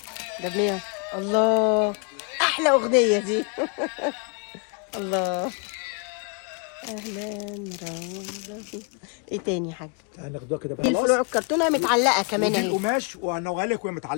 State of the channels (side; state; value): right; quieter; 36.1 dB